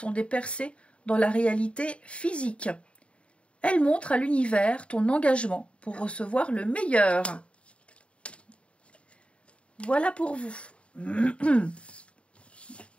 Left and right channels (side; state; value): right; late; 0.059 ms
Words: des percées dans la réalité physique. Elles montrent à l'univers ton engagement pour recevoir le meilleur. Voilà pour vous.